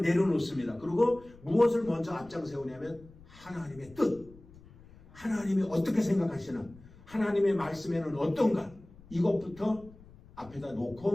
내려놓습니다. 그리고 무엇을 먼저 앞장 세우냐면 하나님의 뜻, 하나님이 어떻게 생각하시나, 하나님의 말씀에는 어떤가, 이것부터 앞에다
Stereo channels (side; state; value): left; noise; rumble, 22 dB below the sound